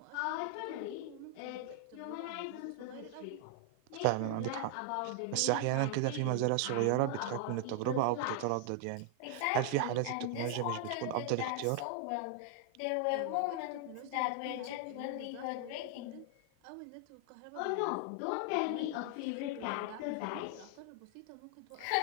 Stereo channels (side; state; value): both; different; correlation 0.00